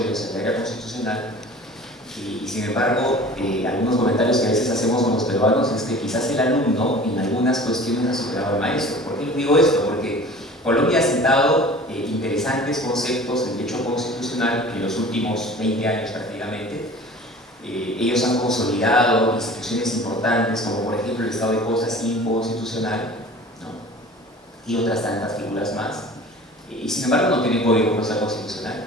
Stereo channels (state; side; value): normal; both; correlation 0.42